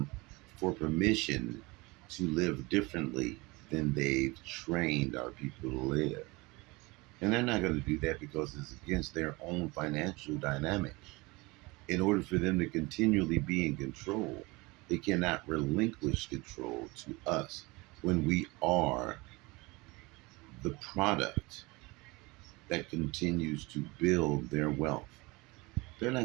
for permission to live differently than they've trained our people to live. And they're not going to do that because it's against their own financial dynamic. In order for them to continually be in control, they cannot relinquish control to us when we are the product that continues to build their wealth. They're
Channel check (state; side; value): quieter; left; 24.0 dB